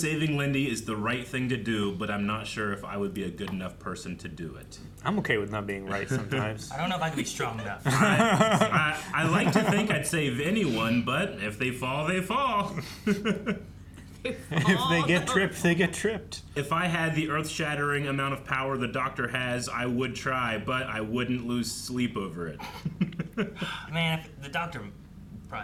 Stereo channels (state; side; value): identical; both; correlation 1.00